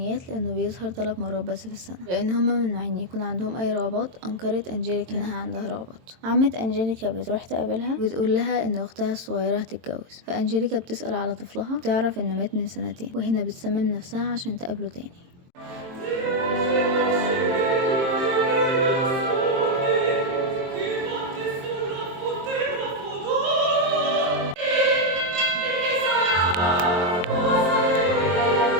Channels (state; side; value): late; left; 22 ms